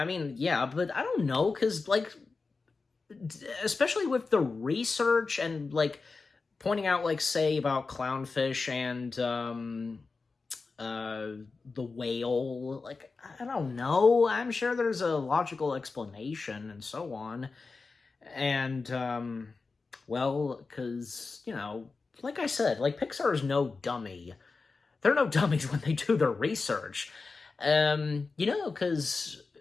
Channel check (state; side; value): quieter; right; 4.2 dB